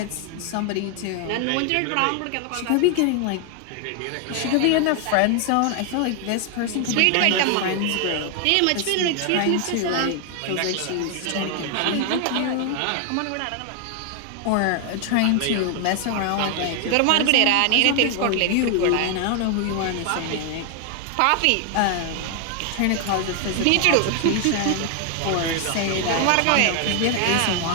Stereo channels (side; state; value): both; different; correlation 0.00